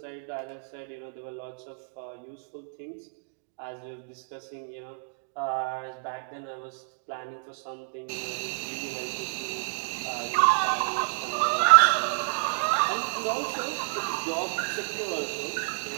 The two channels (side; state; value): left; silent; digital silence